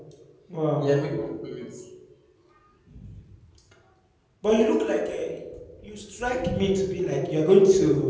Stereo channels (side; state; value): both; identical; correlation 1.00